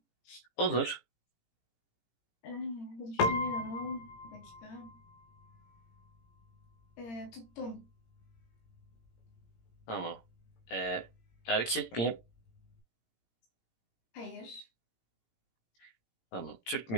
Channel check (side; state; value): right; late; 17 ms